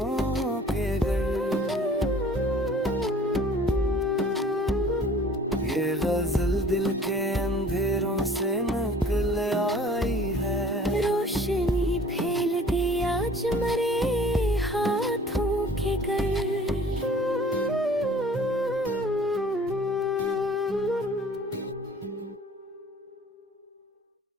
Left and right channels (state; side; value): normal; both; correlation 0.50